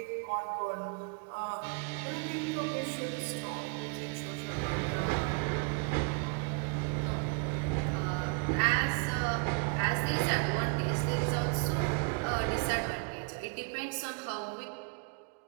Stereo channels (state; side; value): quieter; left; 34.2 dB